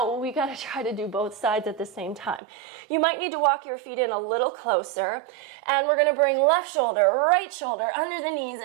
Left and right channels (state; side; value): drops out; left; at 2.4 s